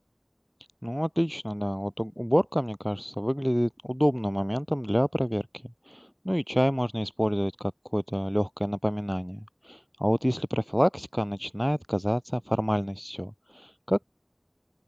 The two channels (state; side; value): identical; both; correlation 1.00